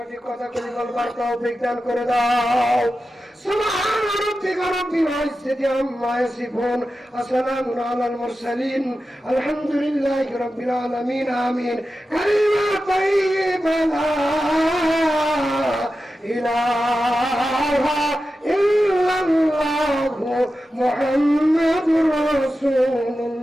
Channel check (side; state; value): both; normal; correlation 0.92